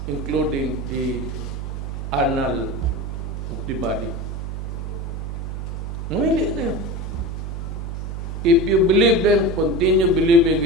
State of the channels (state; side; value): noise; right; hum, 5 dB below the sound